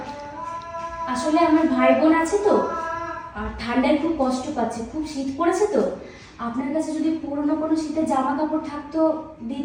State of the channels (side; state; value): both; identical; correlation 1.00